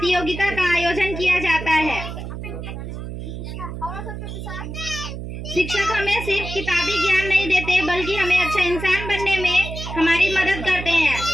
का आयोजन किया जाता है। शिक्षक हमें सिर्फ किताबी ज्ञान नहीं देते, बल्कि हमें अच्छा इंसान बनने में हमारी मदद करते हैं।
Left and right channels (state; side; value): noise; right; hum, 8 dB below the sound